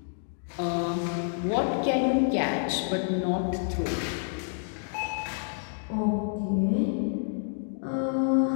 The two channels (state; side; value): silent; right; digital silence